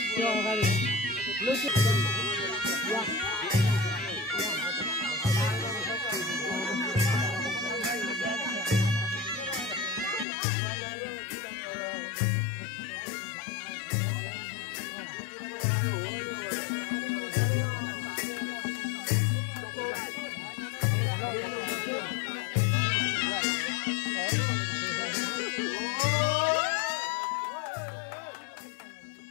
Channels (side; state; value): right; drops out; at 10.2 s